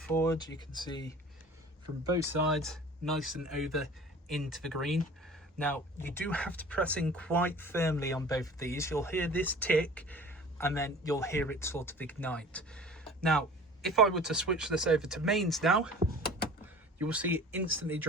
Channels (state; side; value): normal; both; correlation 0.44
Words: you can see from both sides, nice and over into the green. Now you do have to press in quite firmly on both of these. You'll hear this tick and then you'll hear it sort of ignite. Now if I were to switch this over to mains now, you will see it instantly